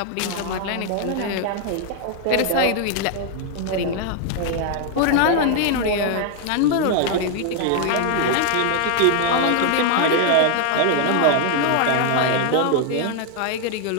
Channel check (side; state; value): both; different; correlation 0.00